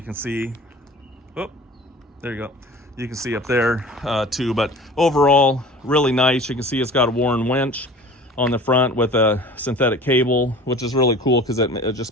can see, oh, there you go. You can see up there too, but overall really nice. You can see it's got a Warren Winch on the front with a synthetic cable, which is really cool because it just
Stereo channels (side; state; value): both; normal; correlation 0.42